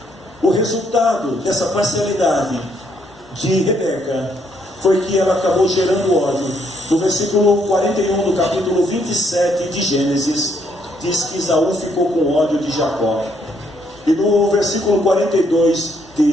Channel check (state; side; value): normal; both; correlation 0.71